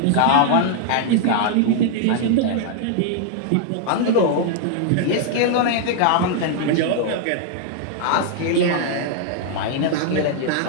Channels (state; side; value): different; both; correlation 0.00